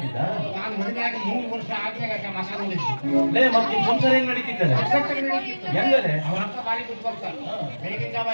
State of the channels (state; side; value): inverted; both; correlation -1.00